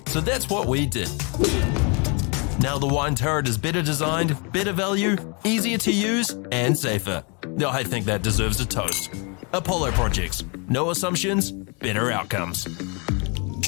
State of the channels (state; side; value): quieter; right; 33.8 dB